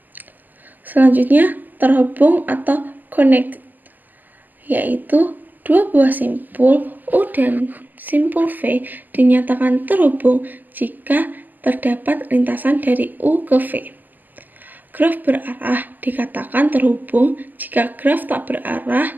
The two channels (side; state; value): left; late; 0.085 ms